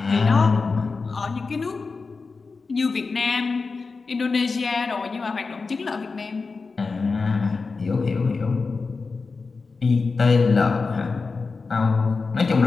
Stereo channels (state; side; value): quieter; right; 4.3 dB